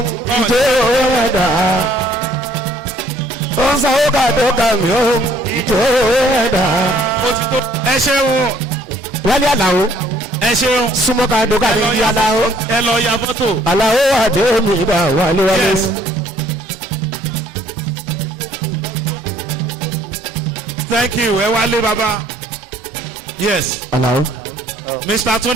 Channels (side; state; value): both; normal; correlation 0.61